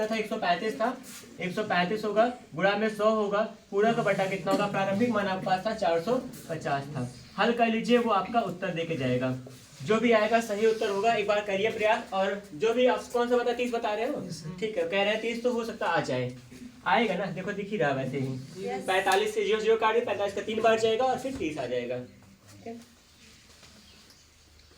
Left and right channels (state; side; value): identical; both; correlation 1.00